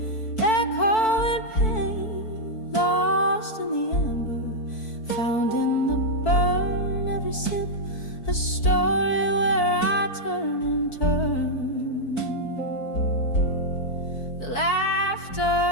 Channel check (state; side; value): late; right; 4.5 ms